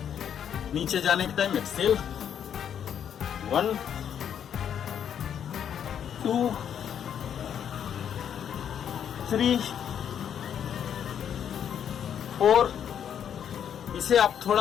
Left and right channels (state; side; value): quieter; right; 8.8 dB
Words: नीचे जाने के टाइम एक्सेल 1 2 3 4। इसे आप